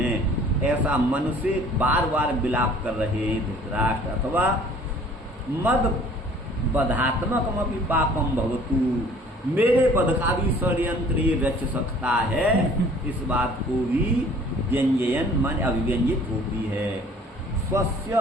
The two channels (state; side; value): normal; both; correlation 0.52